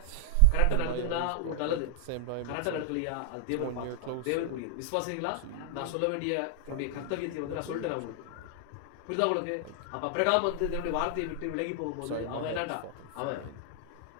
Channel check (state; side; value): different; both; correlation 0.00